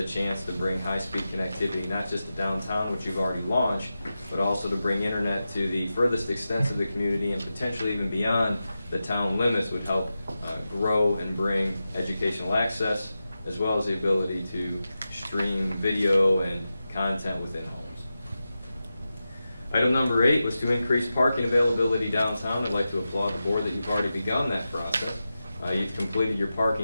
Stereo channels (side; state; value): both; inverted; correlation -0.92